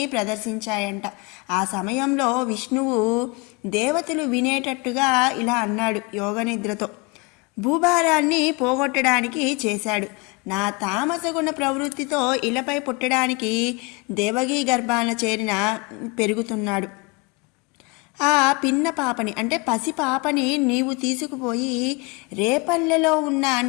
ప్రదర్శించాయంట. ఆ సమయంలో విష్ణువు దేవతలు వినేటట్టుగా ఇలా అన్నాడు యోగనిద్రతో. భూభారాన్ని పోగొట్టడానికి చేశాడు. నా తామసగుణ ప్రవృత్తితో ఇలపై పుట్టడానికి దేవగీ గర్భాన చేరిన పెరుగుతున్నాడు. ఆ పిన్న పాపని అంటే పసి పాపని నీవు తీసుకుపోయి రేపల్లెలో ఉన్న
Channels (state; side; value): quieter; right; 28.5 dB